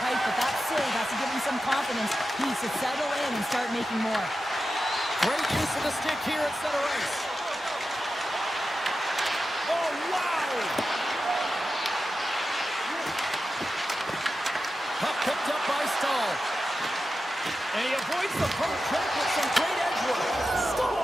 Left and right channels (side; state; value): both; normal; correlation 0.91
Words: but that save has to give him some confidence. He needs to settle in and start making more. Great use of the stick here at center ice. Oh, wow! Puck picked up by Stahl. And he avoids the poke check with some great edge work.